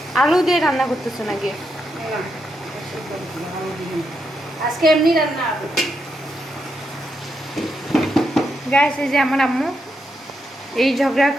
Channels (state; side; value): normal; both; correlation 0.82